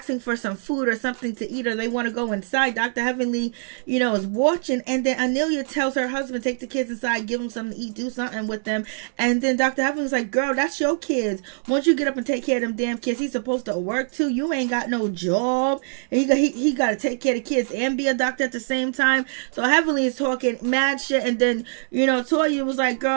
for some food or something to eat, or they want to go inside. Dr. Heavenly, you know, is watching. And then Anila tells her husband, take the kids inside, give them something to eat, do something with them. And then Dr. Heavenly's like, girl, that's your kids. Once you get up and take care of them damn kids, he's supposed to work too. You ain't got no job. And he got to take care of the kids and be a doctor at the same time. So Heavenly is talking mad shit. And then, you know, Toya was like,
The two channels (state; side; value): silent; left; digital silence